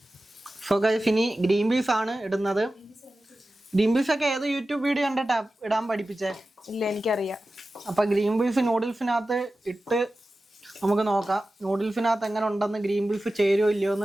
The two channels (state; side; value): normal; both; correlation 0.94